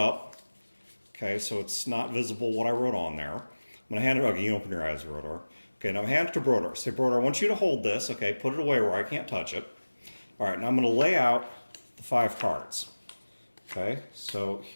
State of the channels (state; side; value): inverted; both; correlation -1.00